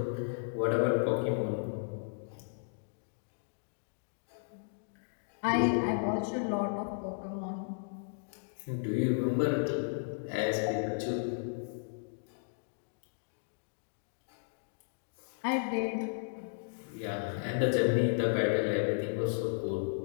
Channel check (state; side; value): silent; right; digital silence